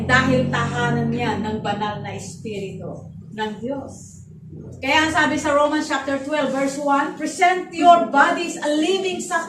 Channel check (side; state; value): both; identical; correlation 1.00